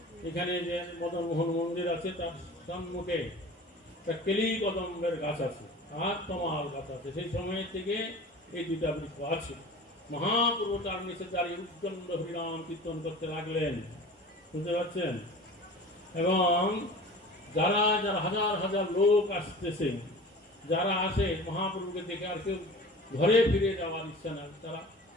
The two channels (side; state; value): both; normal; correlation 0.39